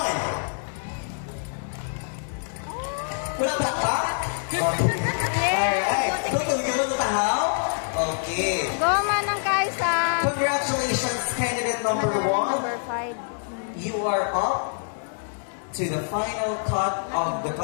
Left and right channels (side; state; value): right; silent; digital silence